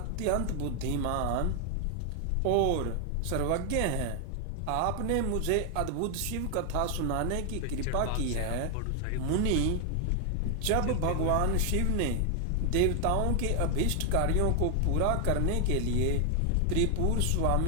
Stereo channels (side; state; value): both; different; correlation 0.00